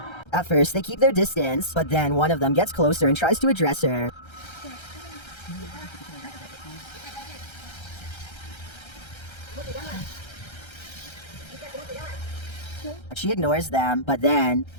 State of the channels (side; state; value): right; late; 1.3 ms